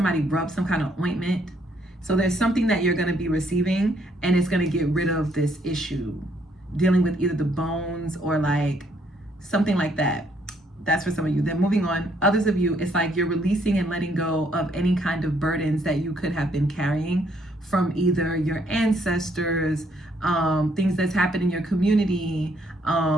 rub some kind of ointment. So there's something that you're going to be receiving, and it's going to get rid of this issue dealing with either the bones or like something like that. That's for some of you. Then moving on, others of you, it's like you're releasing and letting go of any kind of burdens that you could have been carrying from either your ancestors, things that's happened in your community,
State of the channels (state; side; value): normal; both; correlation 0.69